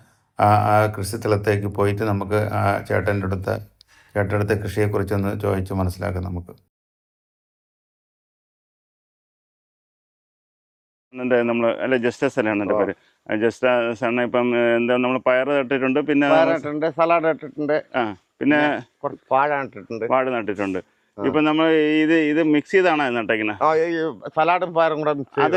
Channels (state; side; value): identical; both; correlation 1.00